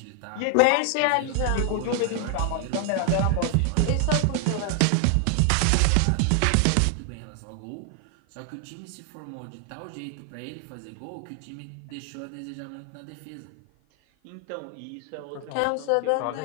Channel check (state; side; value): different; both; correlation 0.00